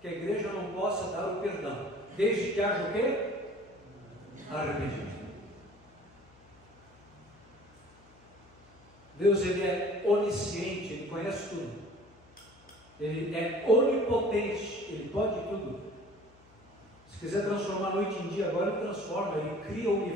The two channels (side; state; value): left; noise; hum, 27 dB below the sound